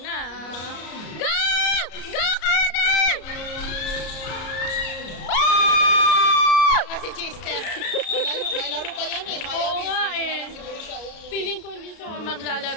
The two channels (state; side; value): late; right; 33 ms